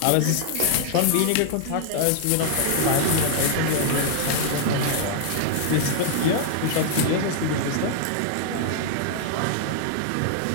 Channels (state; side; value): different; both; correlation -0.01